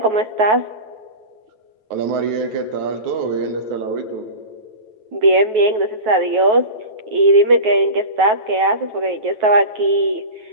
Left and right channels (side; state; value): left; late; 9.3 ms